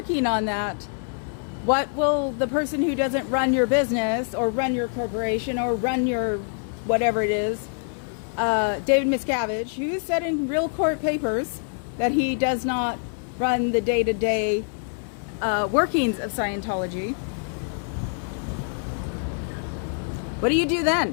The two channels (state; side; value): silent; right; 62 dB below the other